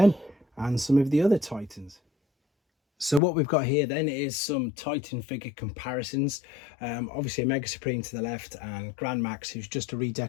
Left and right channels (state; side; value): drops out; right; at 3.2 s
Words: and some of the other Titans. So what we've got here then is some Titan figure comparisons. Obviously a Mega Supreme to the left and Grand Max, who's just a